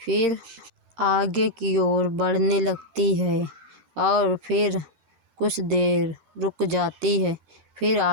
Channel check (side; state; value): left; late; 12 ms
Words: आगे की ओर बढ़ने लगती है और फिर कुछ देर रुक जाती है। फिर